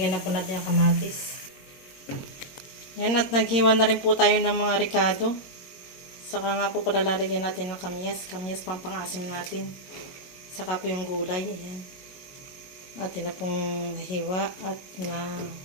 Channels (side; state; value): right; late; 22 ms